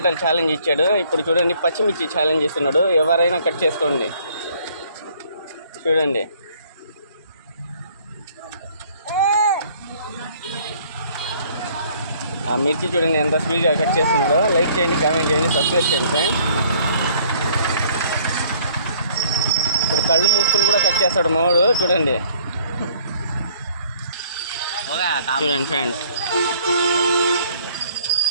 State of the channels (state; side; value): inverted; both; correlation -0.59